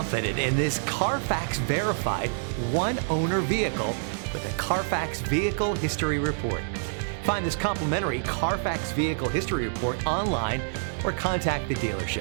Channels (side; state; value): left; silent; 60 dB below the other